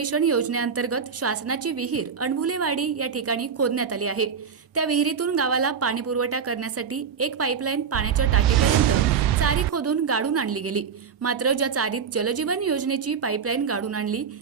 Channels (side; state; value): left; quieter; 6.7 dB